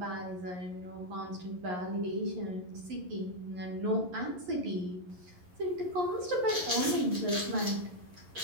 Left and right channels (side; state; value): left; late; 11 ms